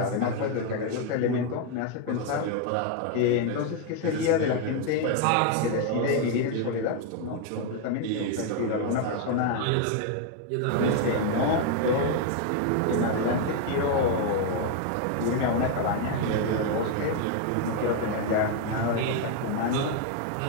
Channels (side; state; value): both; different; correlation 0.01